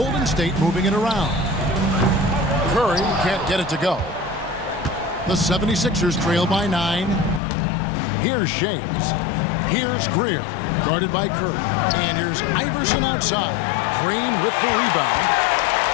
State moving it around. Curry can't get it to go. The 76ers trail by 9. Here's Shays. Here's Greer, guarded by Curry. And here's Iverson outside. Green with the rebound.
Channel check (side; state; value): right; drops out; at 7.4 s